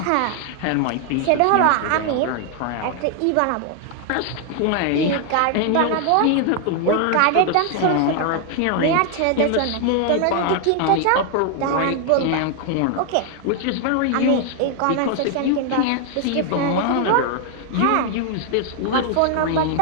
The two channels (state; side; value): different; both; correlation 0.00